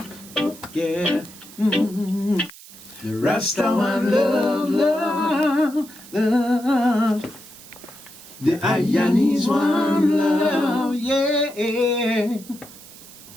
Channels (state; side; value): noise; right; hiss, 19 dB below the sound